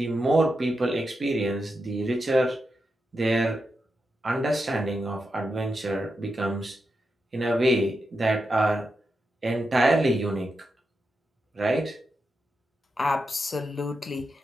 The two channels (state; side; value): normal; both; correlation 0.87